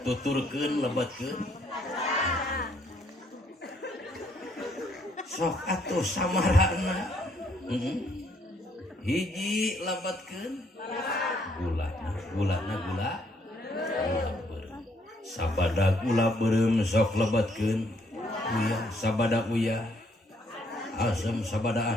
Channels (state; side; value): normal; both; correlation 0.69